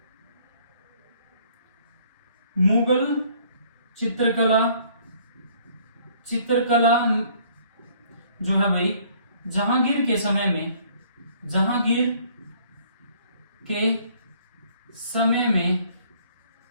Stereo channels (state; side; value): inverted; both; correlation -0.60